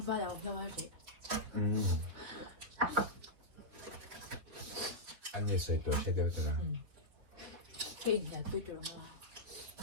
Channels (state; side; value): late; left; 3.9 ms